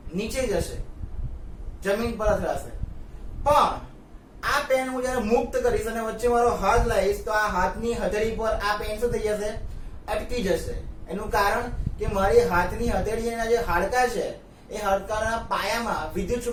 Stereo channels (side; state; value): both; identical; correlation 1.00